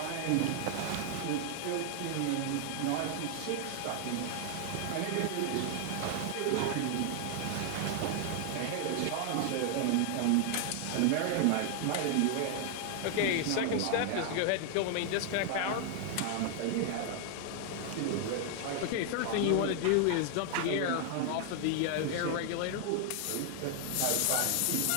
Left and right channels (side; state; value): both; different; correlation 0.00